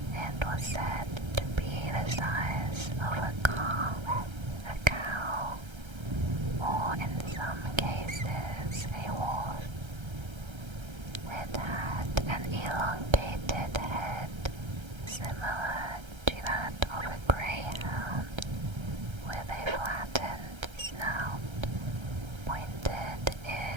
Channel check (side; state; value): left; late; 1.3 ms